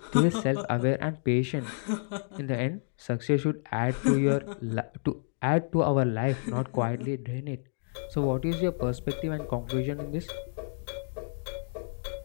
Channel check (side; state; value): right; silent; digital silence